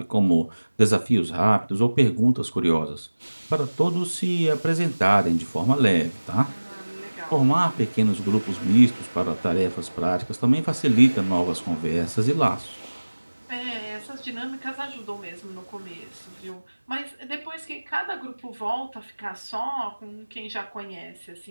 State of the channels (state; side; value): inverted; both; correlation -1.00